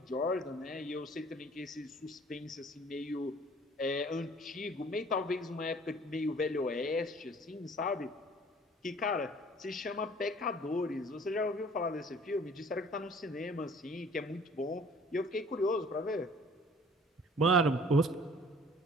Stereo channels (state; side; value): normal; both; correlation 0.53